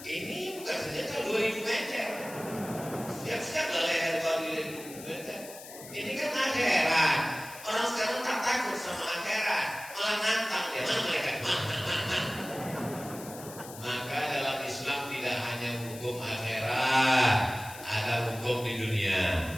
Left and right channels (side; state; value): left; noise; hiss, 15 dB below the sound